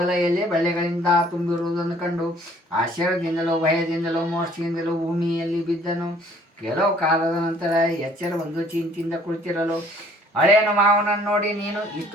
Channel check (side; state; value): both; normal; correlation 0.57